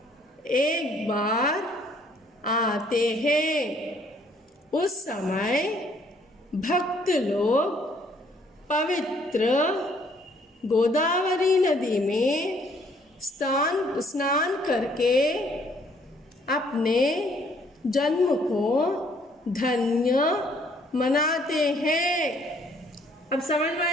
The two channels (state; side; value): normal; both; correlation 0.64